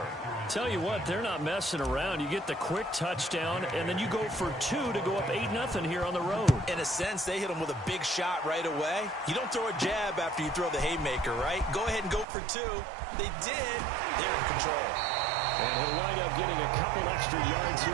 Tell you what, they're not messing around. You get the quick touchdown, and then you go for 2 to go up 8-0 here on the road. In a sense, they hit him with a big shot right away. You don't throw a jab after you throw the haymaker, right? Go ahead and go for 2. They did. They're in control. And he'll wind up getting a couple extra yards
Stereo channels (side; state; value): left; drops out; at 12.2 s